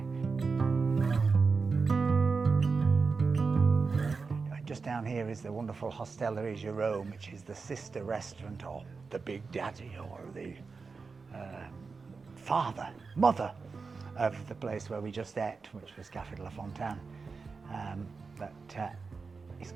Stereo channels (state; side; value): quieter; left; 4.6 dB